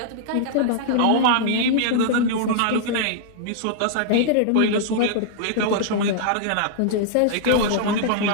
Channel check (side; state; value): both; different; correlation -0.01